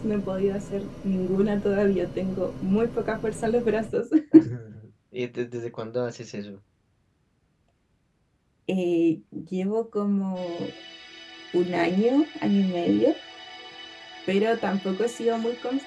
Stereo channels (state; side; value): identical; both; correlation 1.00